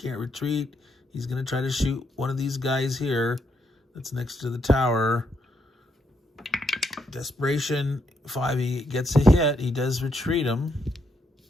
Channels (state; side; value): normal; both; correlation 0.77